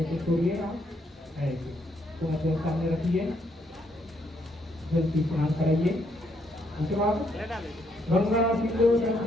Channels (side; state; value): both; normal; correlation 0.73